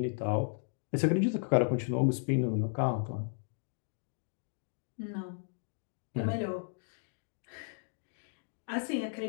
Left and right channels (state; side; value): silent; right; digital silence